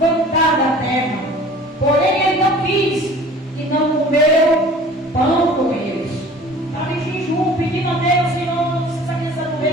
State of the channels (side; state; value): both; normal; correlation 0.46